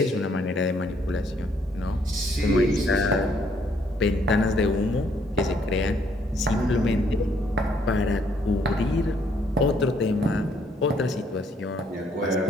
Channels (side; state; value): both; normal; correlation 0.68